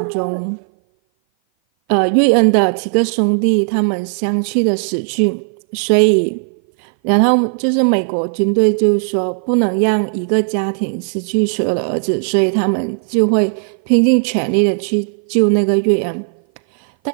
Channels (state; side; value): silent; left; 57 dB below the other